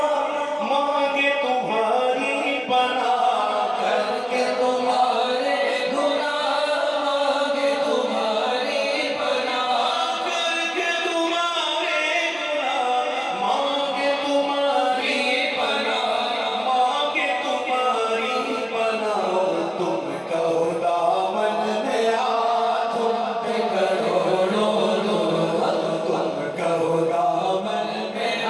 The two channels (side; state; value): both; identical; correlation 1.00